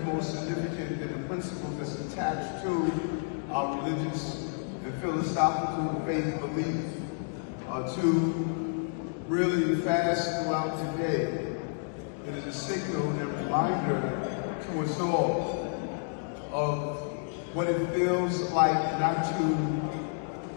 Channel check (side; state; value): right; silent; digital silence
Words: more significant than the principle that's attached to our religious and philosophical faith beliefs. To really fast throughout the day. It is a signal and reminder to us all of what it feels like not to